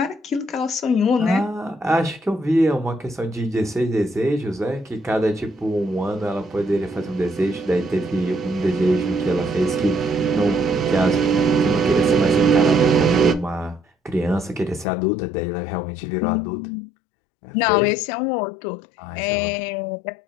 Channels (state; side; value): drops out; right; at 14.9 s